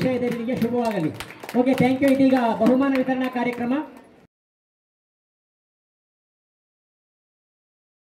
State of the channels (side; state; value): both; identical; correlation 1.00